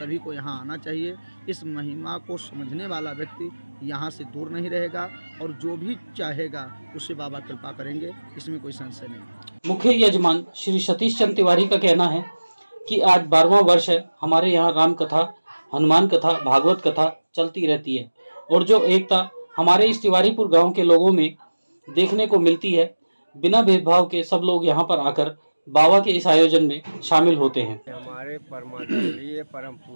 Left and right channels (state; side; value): inverted; both; correlation -1.00